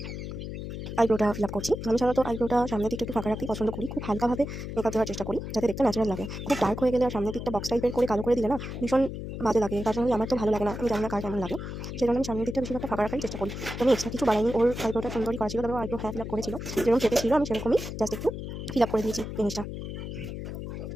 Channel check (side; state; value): left; noise; hum, 7 dB below the sound